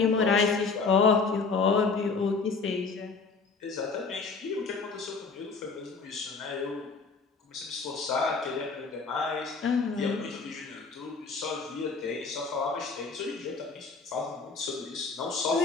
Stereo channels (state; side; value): quieter; right; 4.6 dB